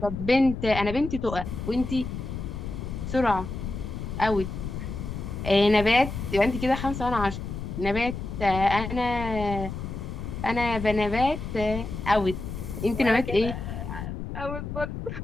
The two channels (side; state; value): left; noise; rumble, 6 dB below the sound